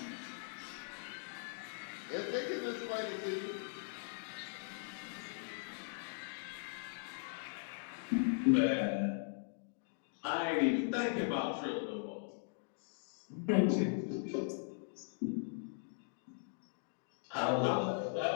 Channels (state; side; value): silent; right; digital silence